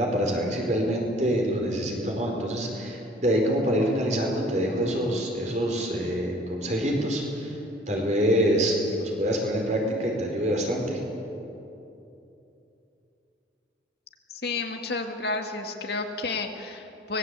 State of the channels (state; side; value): normal; both; correlation 0.50